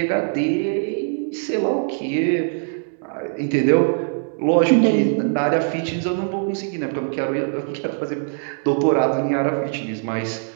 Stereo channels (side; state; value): left; silent; 64 dB below the other